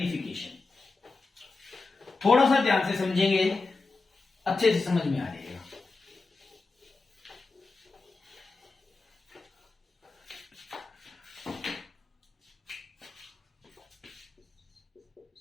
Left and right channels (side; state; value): right; quieter; 3.8 dB